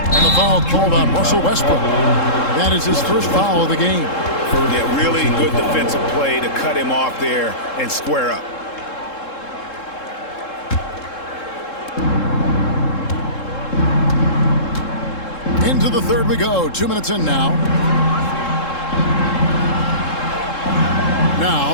And the foul called on Russell Westbrook. That is his first foul of the game. Yeah, really good defensive play to cut him off there and square up. Into the third we go. 2 minutes in now.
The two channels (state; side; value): late; right; 3.7 ms